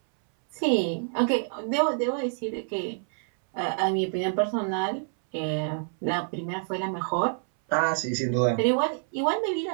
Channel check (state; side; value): silent; left; 60 dB below the other